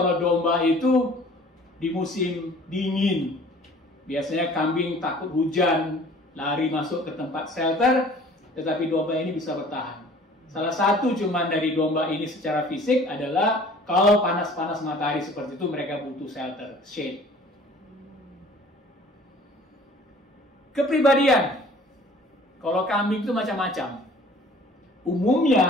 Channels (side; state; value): both; normal; correlation 0.50